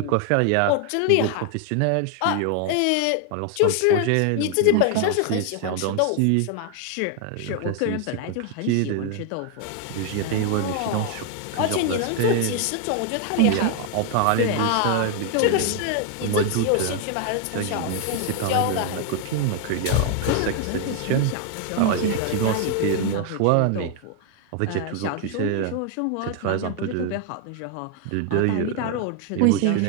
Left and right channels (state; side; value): different; both; correlation 0.00